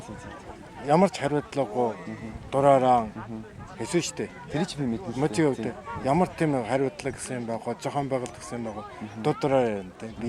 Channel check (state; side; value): identical; both; correlation 1.00